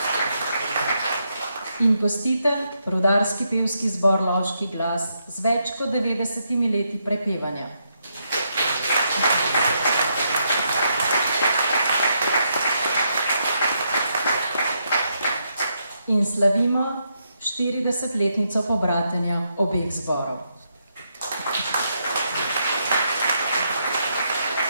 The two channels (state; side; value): inverted; both; correlation -0.80